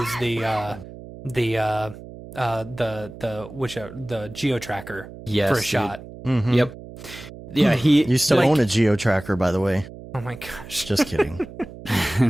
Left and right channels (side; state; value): right; noise; hum, 15 dB below the sound